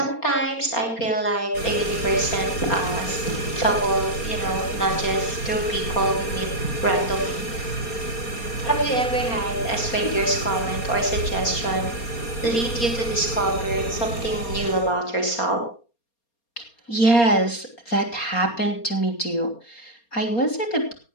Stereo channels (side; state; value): right; late; 4.3 ms